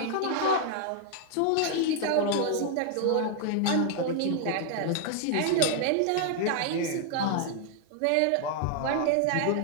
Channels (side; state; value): both; different; correlation 0.00